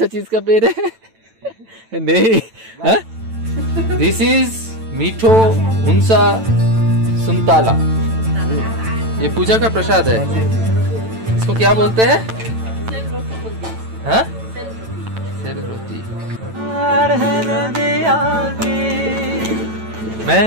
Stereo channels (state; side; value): late; left; 9.0 ms